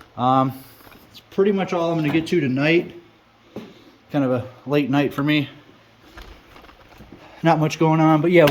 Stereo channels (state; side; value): identical; both; correlation 1.00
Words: It's pretty much all I'm going to get to tonight. Kind of a late night for me. Not much going on, but we